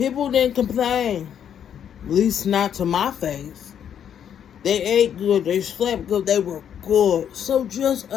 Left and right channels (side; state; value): right; quieter; 8.9 dB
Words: didn't complain, at least not to my face. They ate good, they slept good, they were good. So just